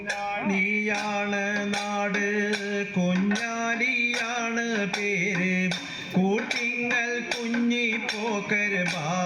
നീയാണ് നാട്, കുഞ്ഞാലിയാണ് പേര്, കൂട്ടിങ്ങൽ കുഞ്ഞിപ്പോക്കർ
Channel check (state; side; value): identical; both; correlation 1.00